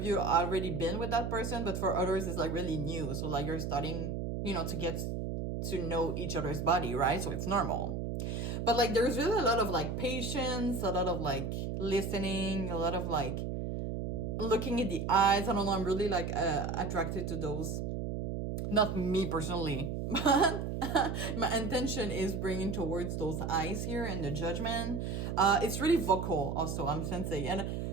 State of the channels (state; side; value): noise; right; hum, 3 dB below the sound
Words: you already been with that person, but for others it's like really new. So like you're starting, you know, to get to know each other's body, right? So it's normal. But like there's really a lot of like patience, a lot of like listening, a lot of like looking at the eyes. I don't know, I'm really like attracted to those. Not me personally, but my intention is bringing towards those eyes here and the judgment. It's really vocal also, I'm sensing. And